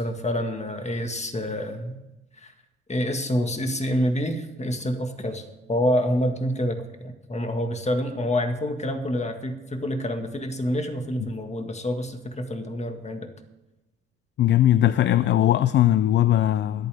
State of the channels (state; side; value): quieter; right; 4.8 dB